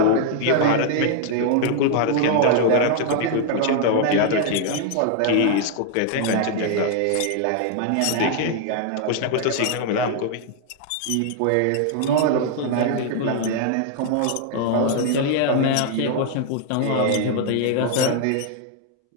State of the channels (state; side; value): different; both; correlation 0.00